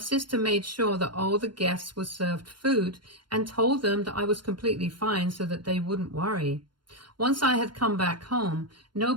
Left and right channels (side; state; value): left; late; 0.72 ms